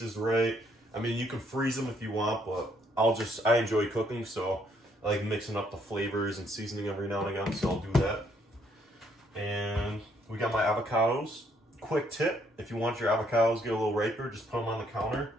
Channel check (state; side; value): normal; both; correlation 0.69